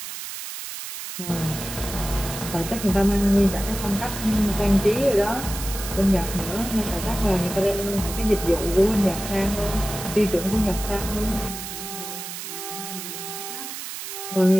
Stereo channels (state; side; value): noise; right; hiss, 8 dB below the sound